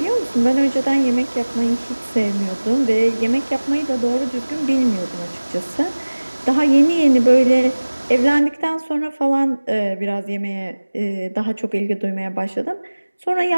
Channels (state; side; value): inverted; both; correlation -1.00